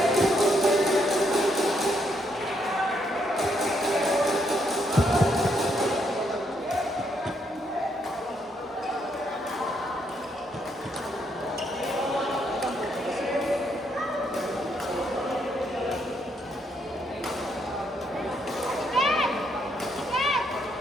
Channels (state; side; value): normal; both; correlation 0.75